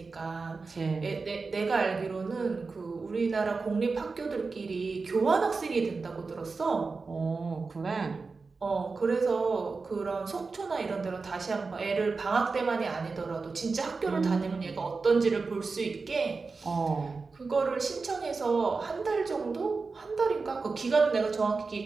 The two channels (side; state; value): left; quieter; 4.3 dB